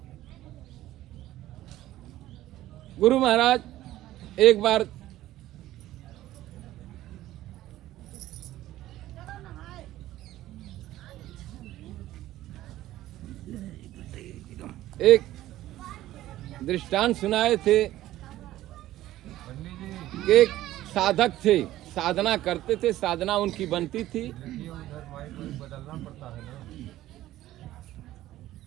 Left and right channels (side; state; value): left; quieter; 14.7 dB